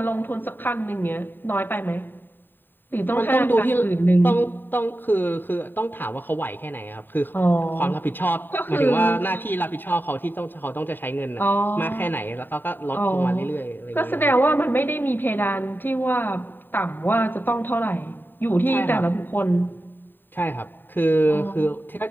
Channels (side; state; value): right; late; 0.093 ms